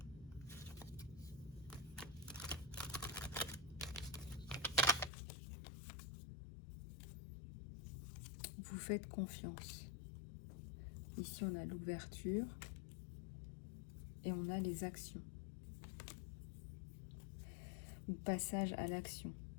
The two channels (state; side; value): drops out; right; at 5.1 s